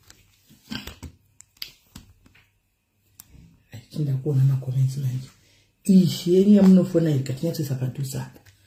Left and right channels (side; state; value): both; identical; correlation 1.00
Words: kuona makomenzi manje yeni yamunofona ikatinyatsoisa padhuze apa